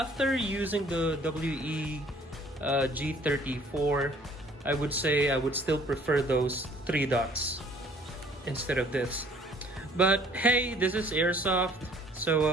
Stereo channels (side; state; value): both; normal; correlation 0.57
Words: using the WE G34, I would say I would still prefer those 3 dots instead of this. But hey, this is airsoft,